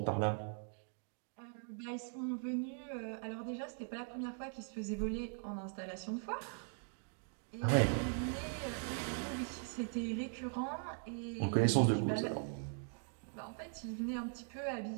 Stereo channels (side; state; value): left; silent; 51 dB below the other